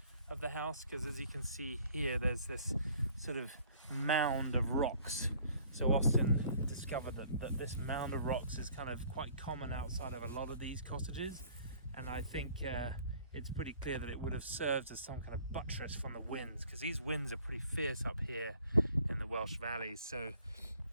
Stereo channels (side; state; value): both; inverted; correlation -0.55